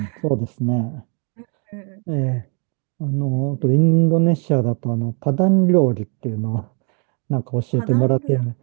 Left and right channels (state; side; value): quieter; left; 37.3 dB